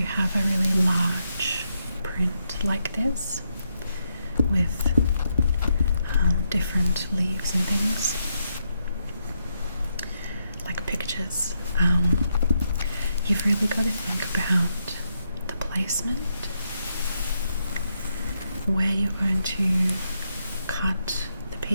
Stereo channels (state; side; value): inverted; both; correlation -0.80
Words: have a really large print like this with different leaves and things, like pictures. You've really got to think about the placement, where you're going to cut the